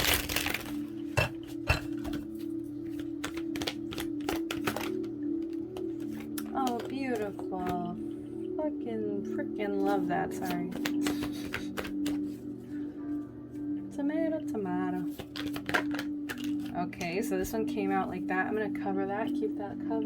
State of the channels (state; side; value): identical; both; correlation 1.00